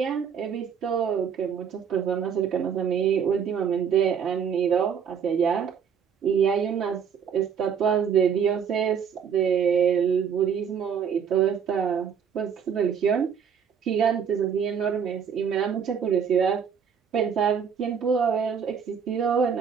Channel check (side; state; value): left; quieter; 7.3 dB